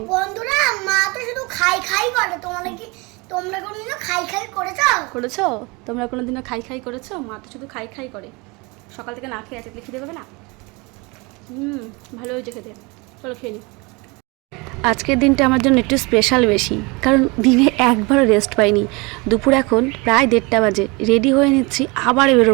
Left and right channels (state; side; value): quieter; left; 27.1 dB